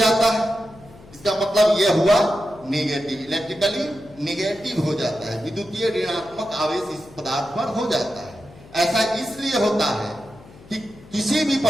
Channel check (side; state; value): left; noise; hum, 22 dB below the sound